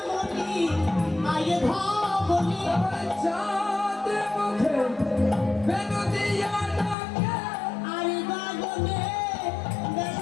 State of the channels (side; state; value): right; drops out; at 7.0 s